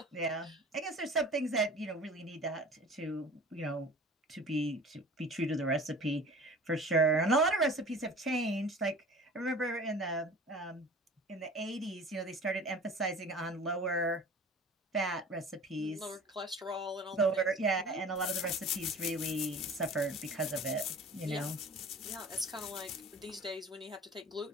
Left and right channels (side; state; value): both; normal; correlation 0.42